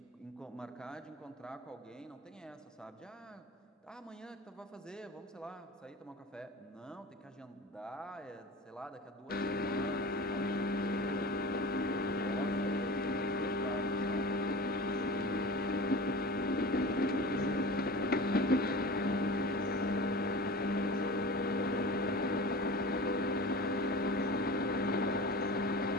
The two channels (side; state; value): both; normal; correlation 0.34